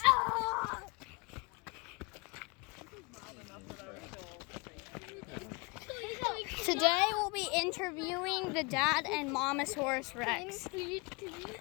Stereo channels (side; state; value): right; quieter; 27.7 dB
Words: Oh! Today we'll be interviewing the dad and Momosaurus Rex.